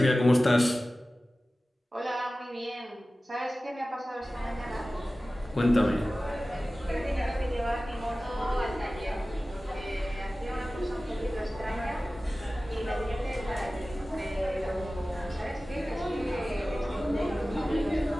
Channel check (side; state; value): both; normal; correlation 0.96